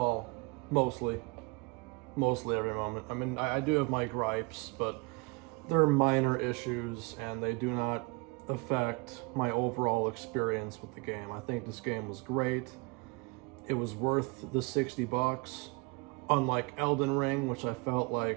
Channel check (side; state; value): left; quieter; 27.5 dB